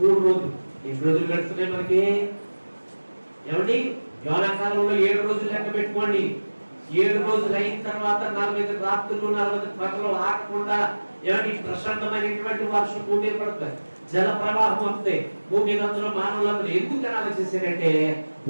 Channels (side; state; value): both; inverted; correlation -1.00